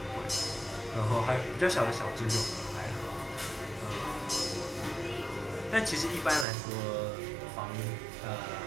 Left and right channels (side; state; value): left; drops out; at 6.5 s